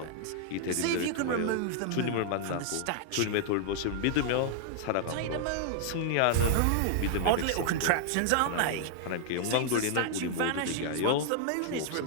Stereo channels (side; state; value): both; different; correlation -0.01